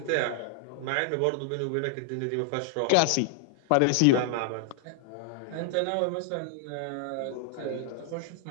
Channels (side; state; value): both; different; correlation 0.00